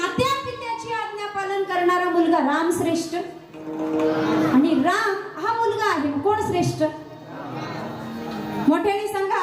पित्याची आज्ञा पालन करणारा मुलगा राम श्रेष्ठ? आणि राम हा मुलगा आहे, कोण श्रेष्ठ? मोठ्याने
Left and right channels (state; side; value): identical; both; correlation 1.00